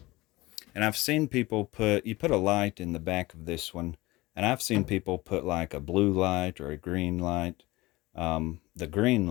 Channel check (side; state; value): right; quieter; 20.3 dB